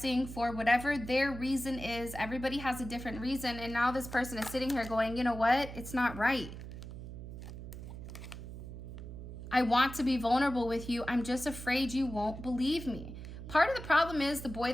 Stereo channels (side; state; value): right; noise; hum, 10 dB below the sound